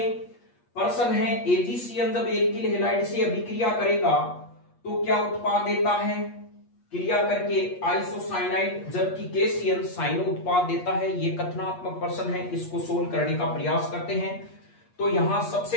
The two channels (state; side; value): late; right; 8.4 ms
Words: प्रश्न है एजीसीएन जब एल्किल हैलाइड से अभिक्रिया करेगा तो क्या उत्पाद देता है क्रिया करके आइसोसाइनाइड जबकि केसीएन साइनो उत्पाद देता है। यह कथनात्मक प्रश्न है, इसको सोल्व करने का प्रयास करते हैं। तो यहां